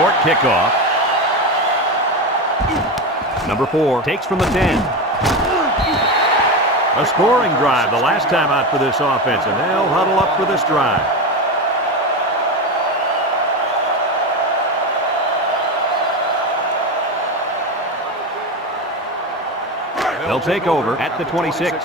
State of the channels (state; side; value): normal; both; correlation 0.19